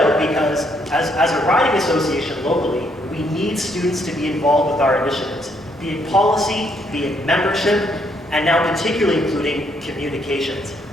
because as a riding association locally, we need students to be involved with our initiatives, be it policy, be it membership, and now particularly including communications.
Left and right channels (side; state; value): both; normal; correlation 0.72